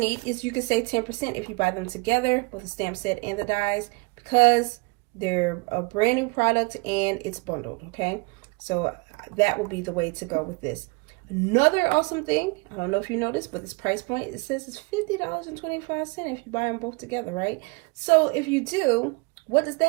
is you can save 10% if you buy them together, both the stamp set and the dies, because they're a brand new product and it's bundled, okay? So that will be the way to go with this. Another awesome thing, I don't know if you noticed, but this price point, it says it's $50.25 if you buy them both together, right? So if you do, what does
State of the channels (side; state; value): left; quieter; 29.5 dB